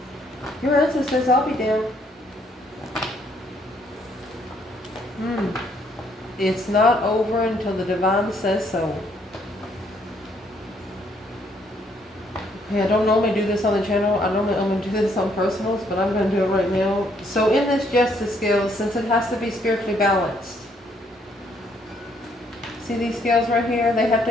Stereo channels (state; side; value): normal; both; correlation 0.69